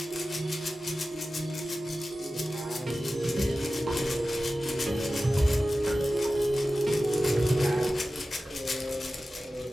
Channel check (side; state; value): both; normal; correlation 0.95